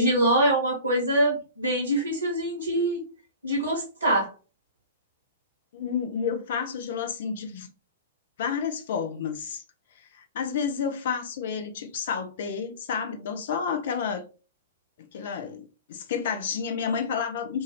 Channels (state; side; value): inverted; both; correlation -0.40